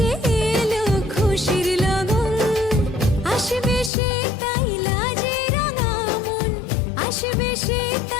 এলো খুশির লগন আসবে সে তাই লাজে রাঙা মন আসবে সে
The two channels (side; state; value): right; drops out; at 3.9 s